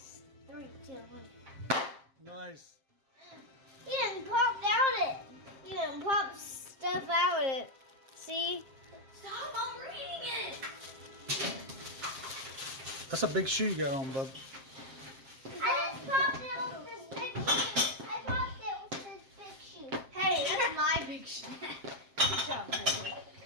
3, 2, 1. Nice. You didn't pop out it. You didn't pop stuff out it. See? Stop, I'm reading it. That's a big shoe you got on, bub. I just popped it with this big shoe. I popped it with this big shoe. Hey, that's my big shit. Good job, Marbury.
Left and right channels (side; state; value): left; late; 7.5 ms